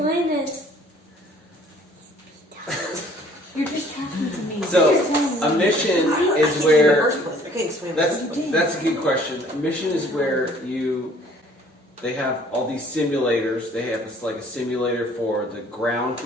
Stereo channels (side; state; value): both; normal; correlation 0.56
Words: it. You're just talking to me. So, a mission is where... That's That's a good question. A mission is where they have all these simulators. They have like a simulator for the ground